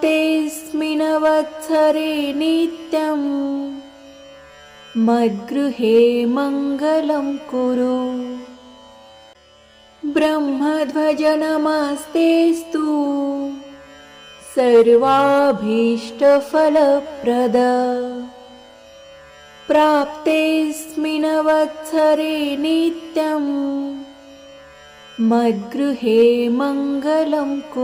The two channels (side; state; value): both; identical; correlation 1.00